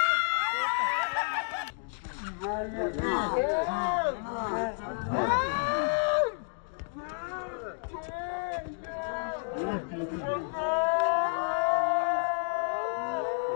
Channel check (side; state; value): right; silent; 58 dB below the other